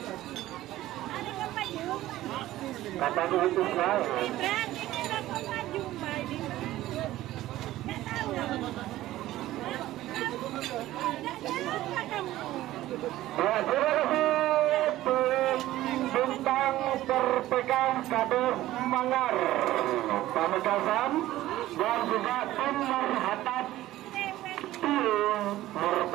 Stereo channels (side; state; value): left; quieter; 15.3 dB